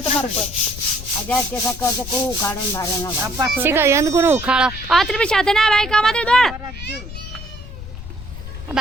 ઉખાડો આત્રી પછી સાથે ના બાઈક આમાં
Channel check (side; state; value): left; noise; rumble, 11 dB below the sound